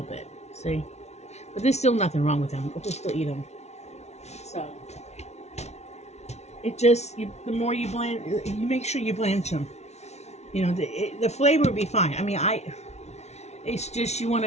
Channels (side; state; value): right; late; 0.32 ms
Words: bit. See? But there's still nothing wrong with them. We'll just still eat them. So, it just, the more you blanch, you make sure you blanch them. The flavor would be fine. I mean, it's just you want